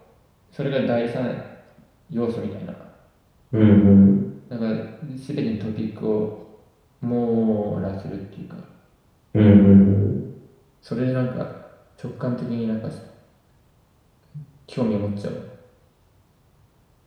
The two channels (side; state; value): both; identical; correlation 1.00